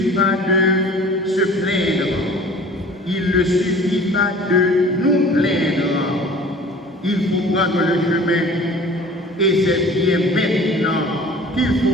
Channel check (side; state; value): both; normal; correlation 0.46